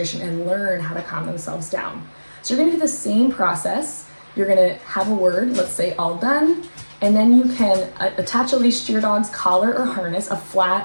and learn how to calm themselves down. So you're gonna do the same process. You're gonna have a word, let's say all done, and then you can attach a leash to your dog's collar or harness, a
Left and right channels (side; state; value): both; inverted; correlation -1.00